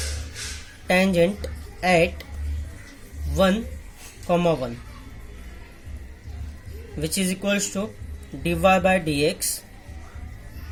tangent at 1, 1, which is equals to dy by dx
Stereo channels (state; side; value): identical; both; correlation 1.00